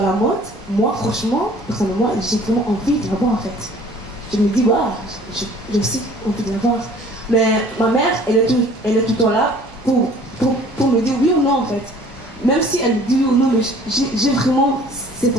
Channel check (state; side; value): normal; both; correlation 0.52